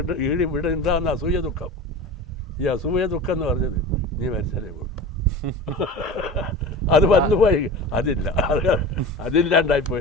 ഇവിടെ ഉണ്ടാകുന്ന അസൂയ ദുഃഖം, ഈ അസൂയ ദുഃഖം എന്ന് പറഞ്ഞത് നീ മരിച്ചാലേ പോകുള്ളൂ. അത് വന്നുപോയി,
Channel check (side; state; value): both; normal; correlation 0.33